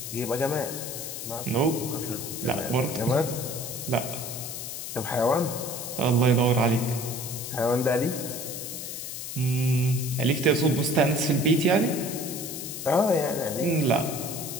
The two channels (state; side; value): noise; left; hiss, 7 dB below the sound